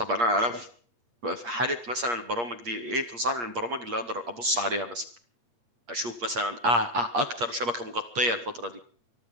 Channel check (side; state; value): left; late; 8.5 ms